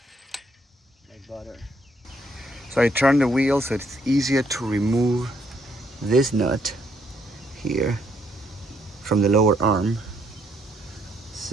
Like butter. So I turn the wheel so it's easier to remove this nut here from the lower arm.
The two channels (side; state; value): both; normal; correlation 0.71